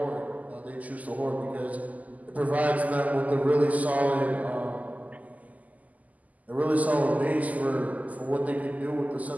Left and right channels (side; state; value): left; late; 0.076 ms